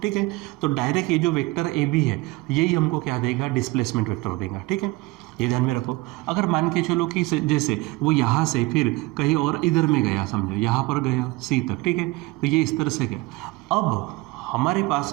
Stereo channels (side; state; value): left; quieter; 21.5 dB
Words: ठीक है। तो डायरेक्ट ये जो वेक्टर ए बी है यही हमको क्या देगा डिस्प्लेसमेंट वेक्टर देगा, ठीक है। ये ध्यान में रखो। अगर मान के चलो कि जैसे वो यहाँ से फिर कहीं और इधर में गया, समझो यहाँ पर गया सी तक, ठीक है, तो ये इस तरह से गया। अब हमारे पास